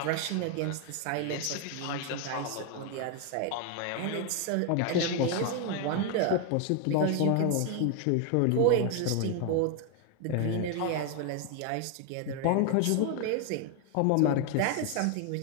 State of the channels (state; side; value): different; both; correlation 0.01